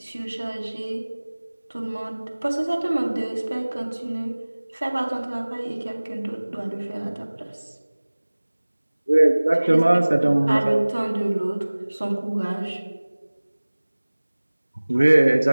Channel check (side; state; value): both; inverted; correlation -1.00